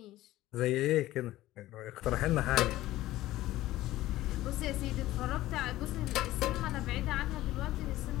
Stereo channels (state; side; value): quieter; right; 15.8 dB